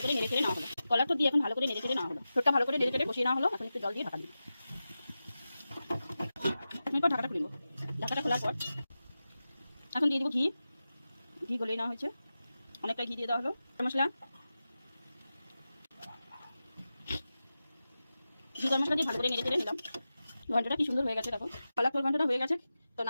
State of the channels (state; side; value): inverted; both; correlation -0.93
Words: করে নেড়ে চেড়ে নেওয়া হলো। কলার থোড় দিয়ে এখন ভালো করে নেড়ে চেড়ে নেওয়া হলো, থোড়টা ভালো করে নেড়ে চেড়ে বসিয়ে নেওয়া হলো। এখন একটু জল দিয়ে ঢাকা দিব। এরপর ঢাকাটা খুলব। ঢাকাটা খোলার পর এখন দিয়ে দেবো ঘি, ঘি গলিয়ে নেওয়া হয়েছে, অনেকটা ঘি দিয়ে দেওয়া হলো। মশলা, ঘি গরম মশলা দিয়ে ভালো করে নেড়ে চেড়ে নিলাম। ঘন্টটা কি সুন্দর হয়ে গেছে, দেখো কলার থোড় ঘন্টটা হয়ে গেছে। তো